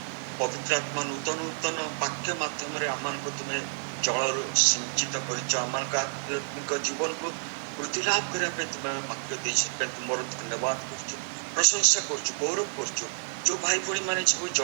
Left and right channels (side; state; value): left; silent; digital silence